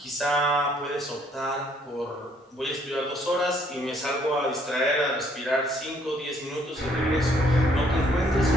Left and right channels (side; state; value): both; normal; correlation 0.65